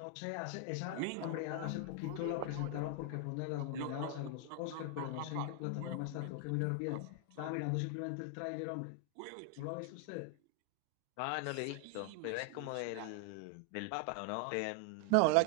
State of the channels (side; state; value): both; different; correlation 0.00